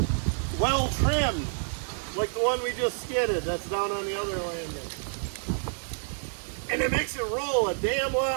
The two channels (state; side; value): silent; left; digital silence